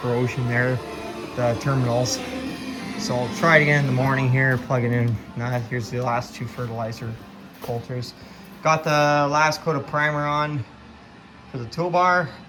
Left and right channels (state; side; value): identical; both; correlation 1.00